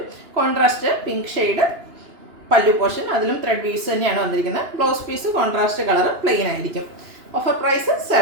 Contrast pink shade pallu portion, അതിലും ത്രെഡ് വീവ്സ് തന്നെയാണ് വന്നിരിക്കുന്നത്. Blouse piece contrast colour plain ആയിരിക്കും. Offer price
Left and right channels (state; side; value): late; left; 2.9 ms